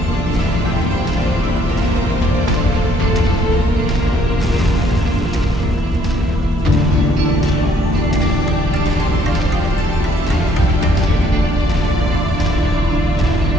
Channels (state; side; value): normal; both; correlation 0.65